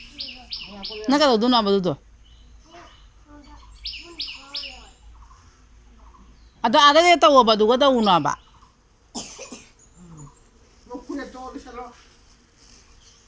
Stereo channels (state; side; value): identical; both; correlation 1.00